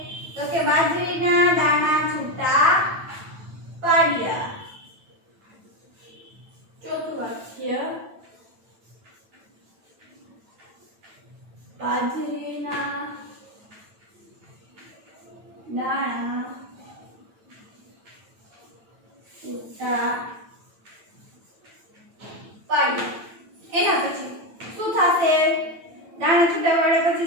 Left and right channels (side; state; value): left; late; 9.0 ms